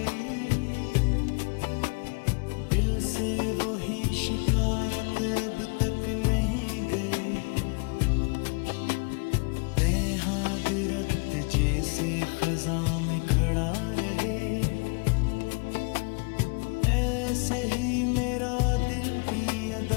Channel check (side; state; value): right; quieter; 33.6 dB